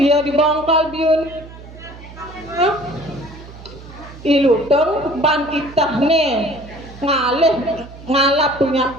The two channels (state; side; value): noise; right; hum, 17 dB below the sound